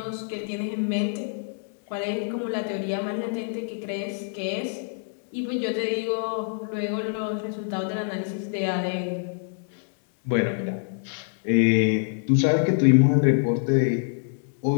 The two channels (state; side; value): silent; right; digital silence